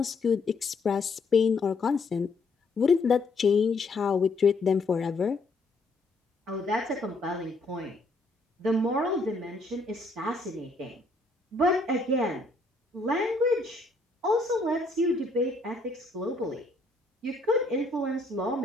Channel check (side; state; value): right; quieter; 3.2 dB